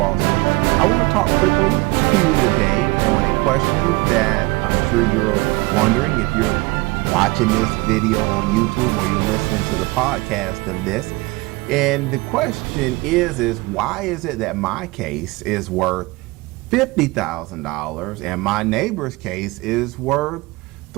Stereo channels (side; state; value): left; quieter; 24.0 dB